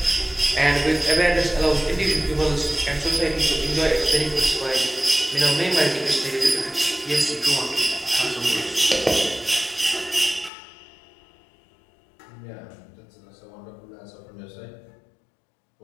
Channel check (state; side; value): drops out; right; at 10.5 s